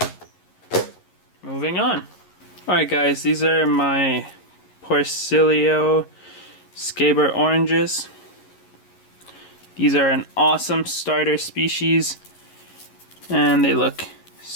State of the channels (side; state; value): right; late; 11 ms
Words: Moving on. Alright guys, these are my Porcellio scaber oranges. These are an awesome starter species and they look